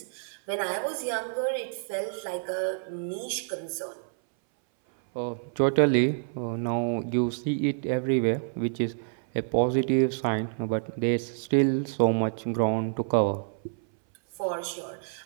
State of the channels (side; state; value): left; silent; 59 dB below the other